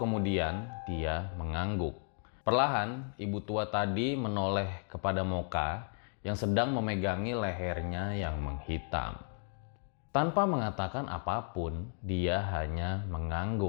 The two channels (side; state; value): right; silent; 55 dB below the other